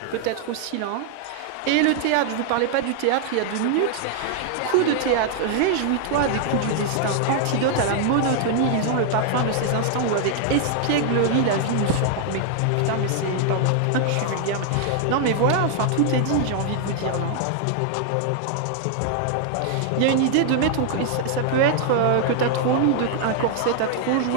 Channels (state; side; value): different; both; correlation 0.00